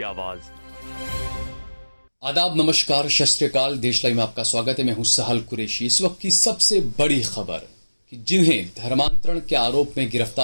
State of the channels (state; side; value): inverted; both; correlation -1.00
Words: आवाज। आदाब, नमस्कार, सत श्री अकाल। देश लाइव में आपका स्वागत है। मैं हूं सहल कुरैशी। इस वक्त की सबसे बड़ी खबर कि जिन्हें धर्मांतरण के आरोप में